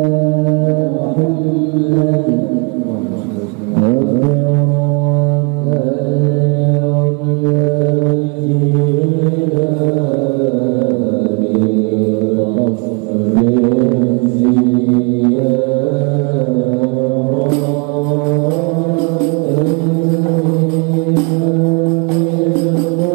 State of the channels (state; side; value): quieter; left; 32.2 dB